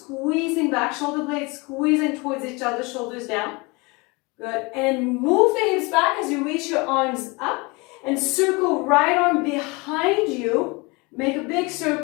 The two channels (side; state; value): right; quieter; 26.7 dB